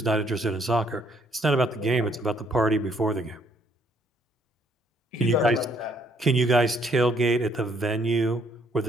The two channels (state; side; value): normal; both; correlation 0.67